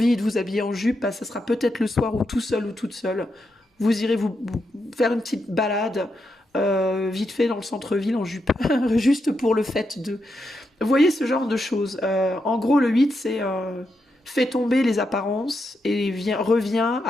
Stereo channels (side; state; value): both; normal; correlation 0.84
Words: de vous habiller en jupe, bah, ça sera peut-être le soir où tout seul ou toute seule, vous irez vous faire une petite balade vite fait dans le centre-ville en jupe, juste pour le fait de... Vous voyez ce genre de choses. En gros, le 8, c'est fait tomber les apparences et revient